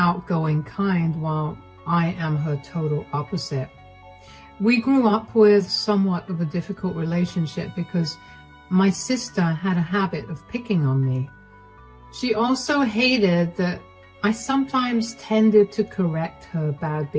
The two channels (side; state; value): both; identical; correlation 1.00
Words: kind, while I am her total opposite. We grew up with somewhat of a difficult relationship because my sister had a habit of picking on me. She also hated that I sometimes tended to correct her bad